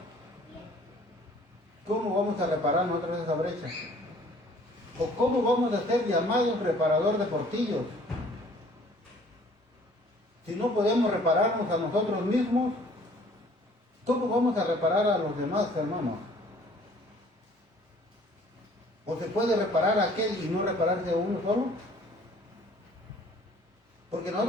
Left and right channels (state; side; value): normal; both; correlation 0.55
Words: ¿cómo vamos a reparar nosotros esa brecha? ¿O cómo vamos a ser llamados reparador de portillos? Si no podemos repararnos a nosotros mismos, ¿cómo vamos a reparar a los demás, hermanos? ¿O se puede reparar a aquel y no repararse a uno solo? Porque